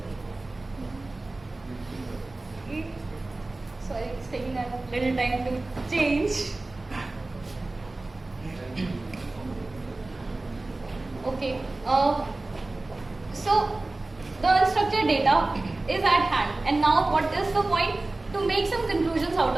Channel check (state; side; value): quieter; left; 3.0 dB